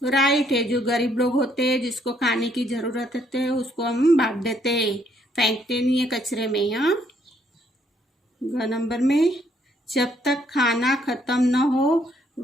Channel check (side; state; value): both; normal; correlation 0.69